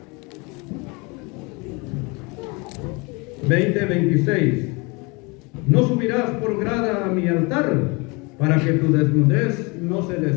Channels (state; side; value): quieter; right; 28.2 dB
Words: 20:26. No subirás por grada a mi altar, para que tu desnudez no se